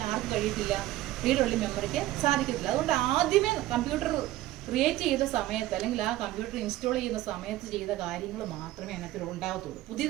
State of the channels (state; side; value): quieter; left; 15.5 dB